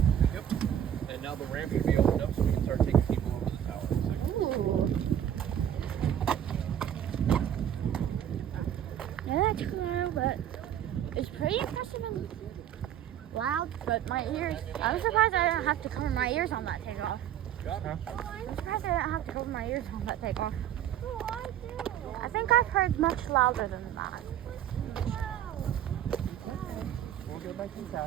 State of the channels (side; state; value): left; quieter; 10.3 dB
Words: Yep. And now the ramp should be opened up so we can start taking people over the tower. Yeah, that's cool, but it's pretty impressive and loud. But my ears, I was surprised I didn't have to cover my ears on that takeoff. I'm surprised I didn't have to cover my ears on that takeoff. Oh, I do. I think I've heard much louder than that. We'll go back